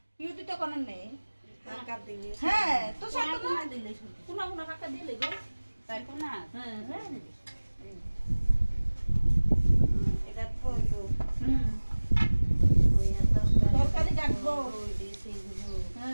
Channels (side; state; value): both; inverted; correlation -1.00